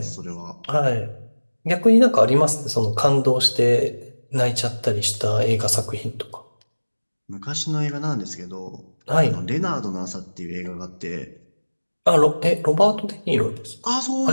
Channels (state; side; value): inverted; both; correlation -1.00